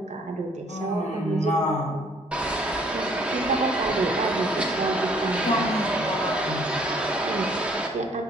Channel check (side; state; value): both; normal; correlation 0.61